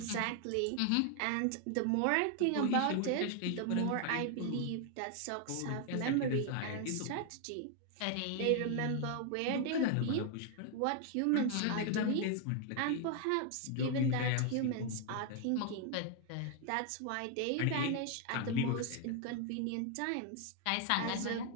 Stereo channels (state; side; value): different; both; correlation 0.00